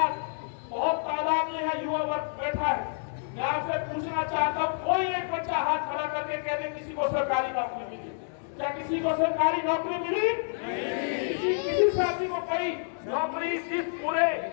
बहुत तादाद में है युवा वर्ग बैठा है। मैं आपसे पूछना चाहता हूँ, कोई एक बच्चा हाथ खड़ा करके कह दे किसी को सरकारी नौकरी मिली? क्या किसी को सरकारी नौकरी मिली? किसी साथी को कोई नौकरी?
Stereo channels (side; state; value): right; silent; digital silence